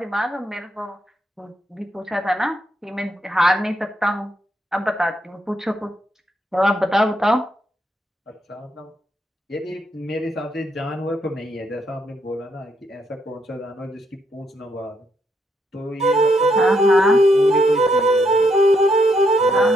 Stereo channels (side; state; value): both; normal; correlation 0.76